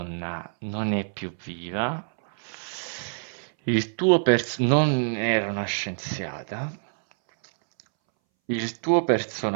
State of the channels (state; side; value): silent; left; 61 dB below the other